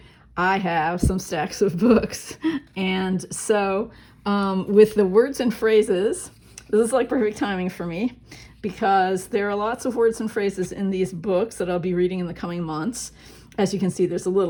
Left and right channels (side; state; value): both; identical; correlation 1.00